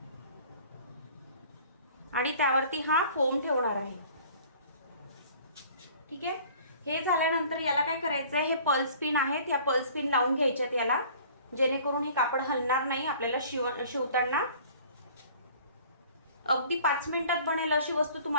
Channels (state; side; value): inverted; both; correlation -0.50